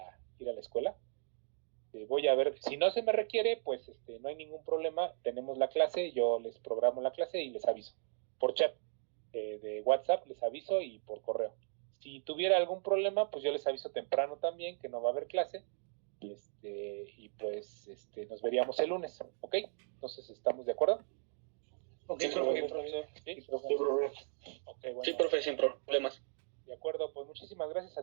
escuela. Voy a ver, si no se me requiere, pues no hay ningún problema, tenemos la clase, yo les programo la clase y les aviso, por chat de WhatsApp les aviso y por correo. Si tuviera algún problema, pues yo les aviso temprano también que no va a haber clase y pues nos veríamos el lunes, ¿ok? Entonces, ¿estamos de acuerdo? Okay, sí, profesor. ¿Sí? Okay, bueno. Sí, profe, sin problemas. De acuerdo, pues muchísimas gracias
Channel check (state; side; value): silent; left; 53 dB below the other